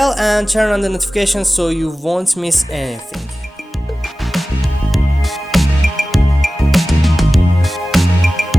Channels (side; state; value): both; normal; correlation 0.96